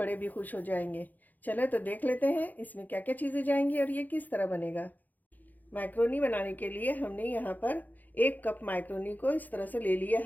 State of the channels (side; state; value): right; late; 0.083 ms